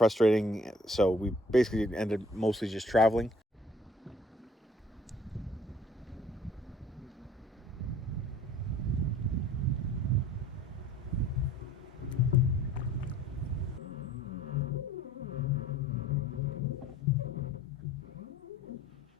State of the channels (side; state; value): both; normal; correlation 0.54